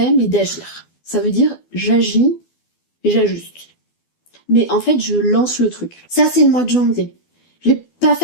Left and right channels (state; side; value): late; right; 12 ms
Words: mais d'agir. Ça veut dire, j'agis et j'ajuste. Mais en fait, je lance le truc. Ça, c'est le mois de janvier. Je vais pas